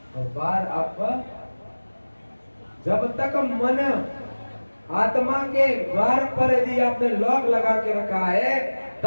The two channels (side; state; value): both; inverted; correlation -1.00